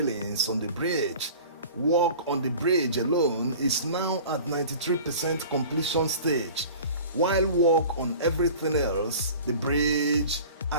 on the bridge. Work on the bridge alone is now at 93% completion stage, while work on everything else, the bridge,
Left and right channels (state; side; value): inverted; both; correlation -0.41